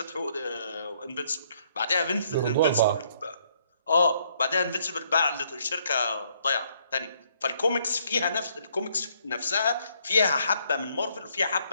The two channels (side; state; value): both; inverted; correlation -0.68